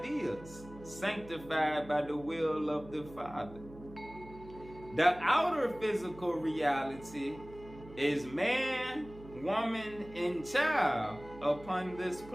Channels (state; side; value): noise; right; hum, 18 dB below the sound